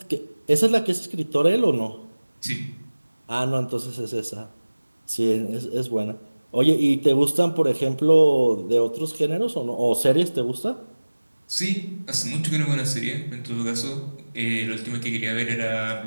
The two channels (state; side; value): inverted; both; correlation -1.00